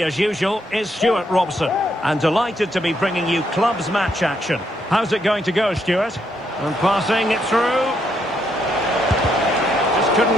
as usual, is Stuart Robson. And delighted to be bringing you clubs match action. How's it going to go, Stuart? And passing it through. Just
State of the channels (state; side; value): normal; both; correlation 0.76